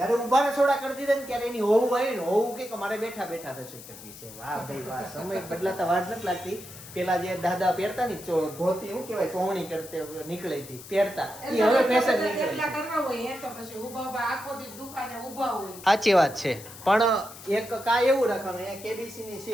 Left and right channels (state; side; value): noise; left; hiss, 16 dB below the sound